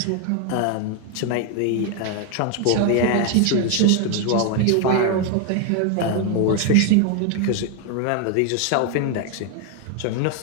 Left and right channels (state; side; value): different; both; correlation 0.01